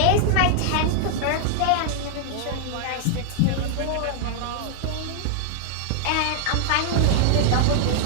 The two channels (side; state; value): both; different; correlation 0.00